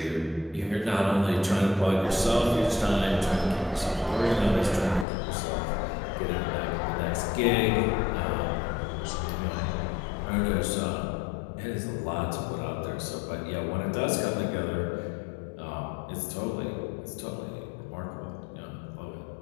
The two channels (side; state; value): right; drops out; at 5.1 s